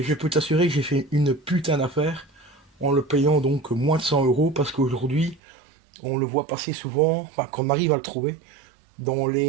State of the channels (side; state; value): left; drops out; at 5.4 s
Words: je peux t'assurer que j'ai fait une putain d'affaire en le payant donc moins de 100 euros parce qu'aujourd'hui on le voit passer souvent, enfin qu'on arrive à le trouver dans